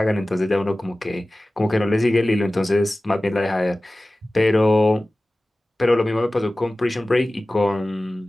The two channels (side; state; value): both; normal; correlation 0.97